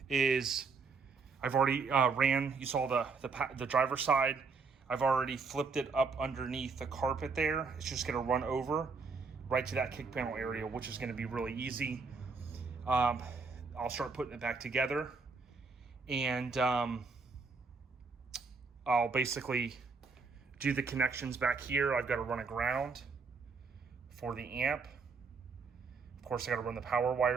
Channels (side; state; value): left; quieter; 4.7 dB